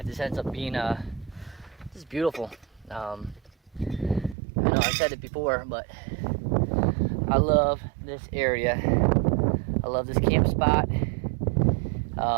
just ends up being just beautiful. I know I said it before, but I love this area. I love this camp spot.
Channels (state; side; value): drops out; left; at 4.4 s